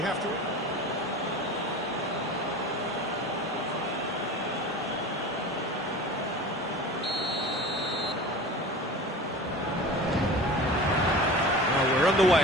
have to... Well, we're on the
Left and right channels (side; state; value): both; normal; correlation 0.36